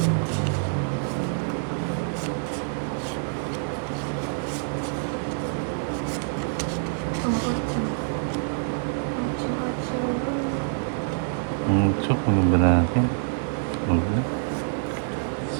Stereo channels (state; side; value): silent; left; 61 dB below the other